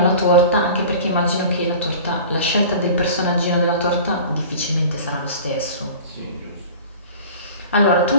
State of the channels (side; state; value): both; inverted; correlation -0.40